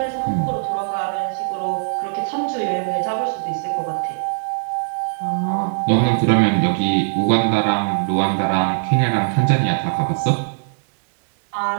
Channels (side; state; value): left; silent; digital silence